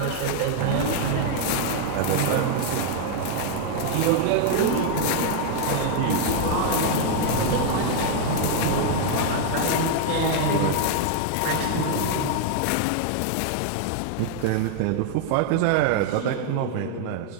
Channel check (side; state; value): both; different; correlation 0.00